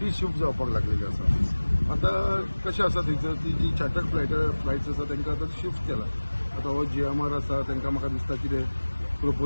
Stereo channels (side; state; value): both; inverted; correlation -1.00